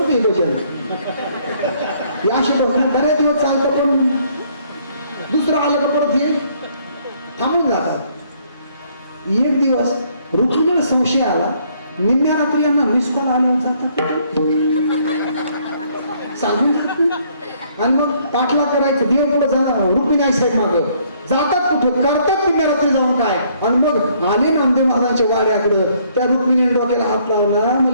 ते भजन. असे बऱ्याच दिवस चालतं पण दुसरं आलं का परत हे थांबून जातात. एक दिवस रुक्मिणीला संशय आला. निम्म्या रात्री यांना मिस कॉल आल्यावर जातात सांगून आणि मग पाठला करायचं. देव पुढे जाणार रुक्मिणी आई साहेब माग जातात कुठं करतात निम्म्या रात्री जाऊन काय. आणि मग आले नामदेव महाराजांच्या वाड्याकडं. त्या रुक्मिणीने डोक्याला हात लावला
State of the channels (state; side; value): inverted; both; correlation -0.65